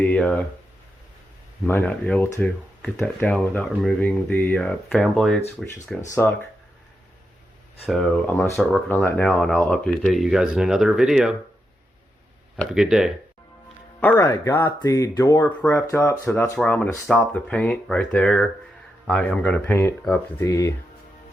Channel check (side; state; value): both; normal; correlation 0.85